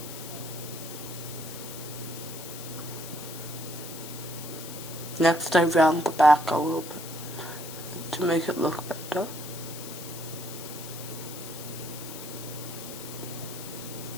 Next I round the back a little bit to make it look better.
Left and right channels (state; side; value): noise; left; hiss, 11 dB below the sound